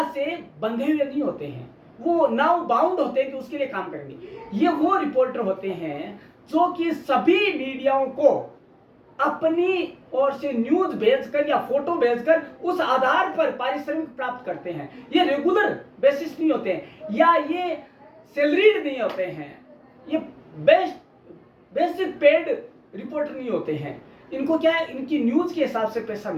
से बंधे हुए नहीं होते हैं, वो नाउ बाउंड होते हैं कि उसके लिए काम करेंगे। ये वो रिपोर्टर होते हैं जो कि सभी मीडियाओं को अपनी ओर से न्यूज भेजकर या फोटो भेजकर उस आधार पर पारिश्रमिक प्राप्त करते हैं। ये रेगुलर बेसिस नहीं होते हैं, या ये सैलरीड नहीं होते हैं, ये बेसिक पेड रिपोर्टर नहीं होते हैं। इनको क्या है, इनकी न्यूज के हिसाब से पैसा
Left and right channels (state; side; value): identical; both; correlation 1.00